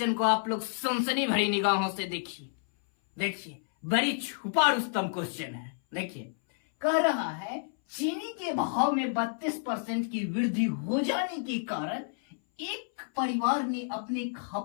को आप लोग सनसनी भरी निगाहों से देखिए बड़ी छुपा रुस्तम क्वेश्चन है। देखिए, कह रहा है चीनी के भाव में 32% की वृद्धि हो जाने के कारण एक परिवार ने अपने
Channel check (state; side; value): silent; right; 58 dB below the other